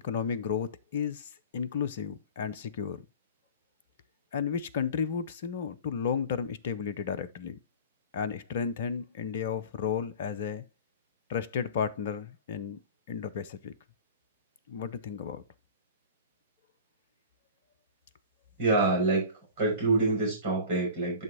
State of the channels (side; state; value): both; inverted; correlation -0.38